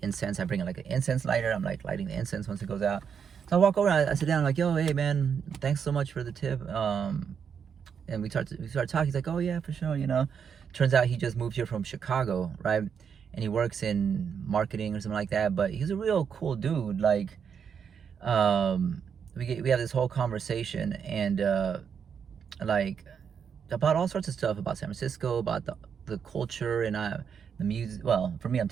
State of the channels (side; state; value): left; quieter; 7.1 dB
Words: incense. I bring like an incense lighter. I'm like lighting the incense once it goes out. So I walk over, I sit down, I'm like, yo, hey, man, thanks so much for the tip. And we start talking. He's like, oh yeah, for sure. Turns out he just moved here from Chicago, right? And he works in marketing or something like that. But he's a real cool dude. Like, we have this whole conversation, and like about all sorts of stuff about San Francisco, about the culture, and the music. Well, for me, I'm